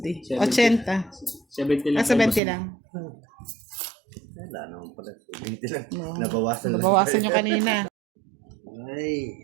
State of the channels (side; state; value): left; drops out; at 2.4 s